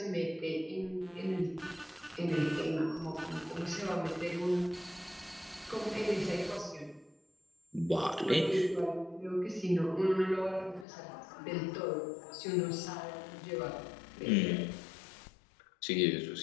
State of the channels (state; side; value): drops out; right; at 10.9 s